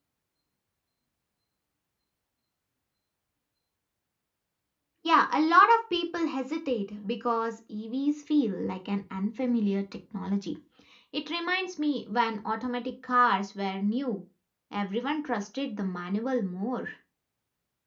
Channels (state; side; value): identical; both; correlation 1.00